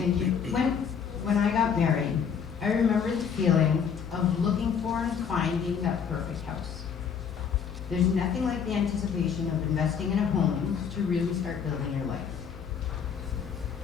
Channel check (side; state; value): right; quieter; 7.0 dB